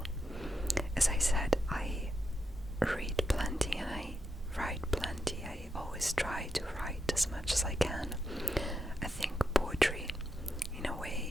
as I said, I read plenty and I write plenty. I always try to write as much as I can. I think poetry, in a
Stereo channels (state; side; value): normal; both; correlation 0.85